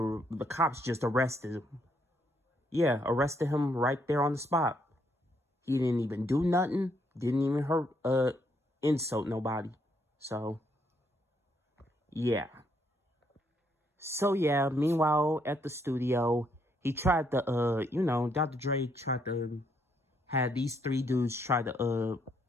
cops just arrested him. Yeah, arrested him right there on the spot. He didn't even do nothing, didn't even hurt insult nobody. So yeah. So yeah, meanwhile at the studio, he tried to Dr. Dre tried to have these three dudes try to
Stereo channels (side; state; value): both; normal; correlation 0.73